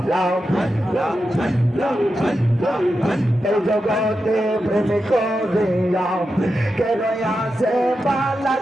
এই জগতে প্রেম করিয়া কেন আসে পালা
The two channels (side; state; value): both; normal; correlation 0.89